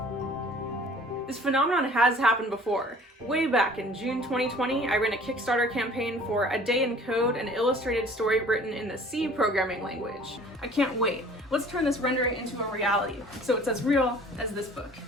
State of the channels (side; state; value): both; normal; correlation 0.50